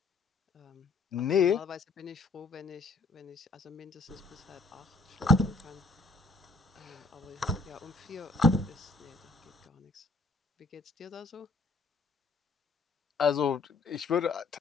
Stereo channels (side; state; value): right; quieter; 3.4 dB